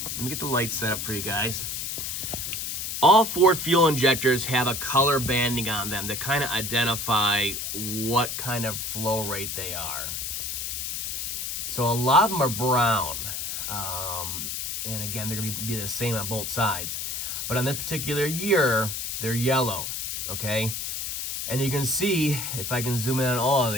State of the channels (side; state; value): left; noise; hiss, 3 dB below the sound